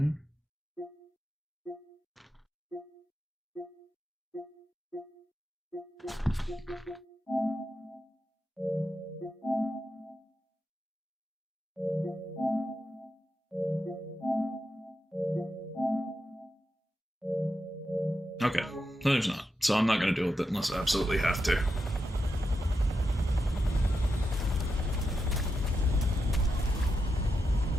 Okay, no, there's not. So I'm not going to deal with it unless I absolutely have to.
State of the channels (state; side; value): normal; both; correlation 0.87